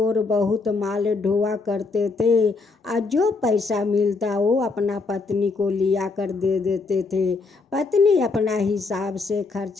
बहुत माल ढोआ करते थे और जो पैसा मिलता वो अपना पत्नी को लिया कर दे देते थे। पत्नी अपना हिसाब से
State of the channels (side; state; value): right; quieter; 4.0 dB